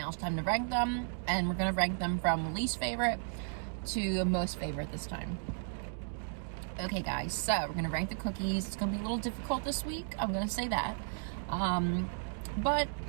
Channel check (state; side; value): silent; left; digital silence